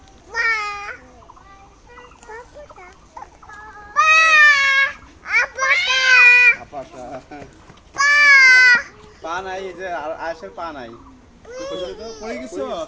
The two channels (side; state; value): both; identical; correlation 1.00